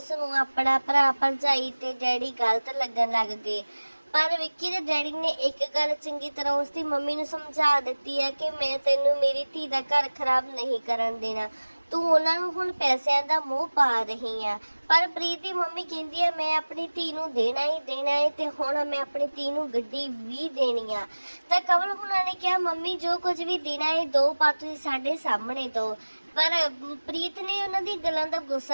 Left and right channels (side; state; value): both; inverted; correlation -1.00